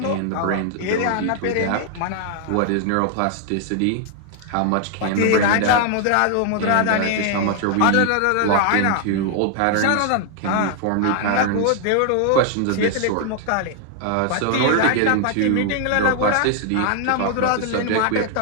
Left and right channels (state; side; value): different; both; correlation 0.00